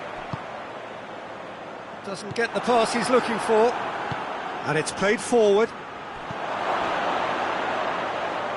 Doesn't get the pass he's looking for. And it's played forward.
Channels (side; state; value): both; identical; correlation 1.00